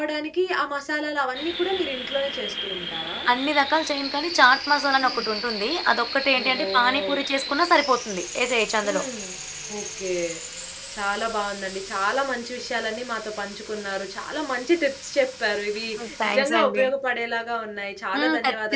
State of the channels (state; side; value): identical; both; correlation 1.00